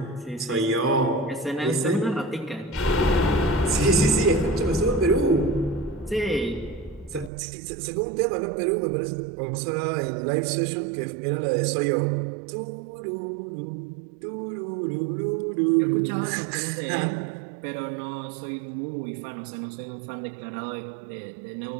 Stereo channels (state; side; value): drops out; left; at 7.3 s